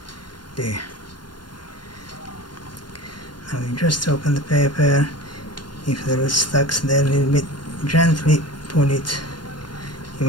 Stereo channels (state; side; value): late; right; 0.71 ms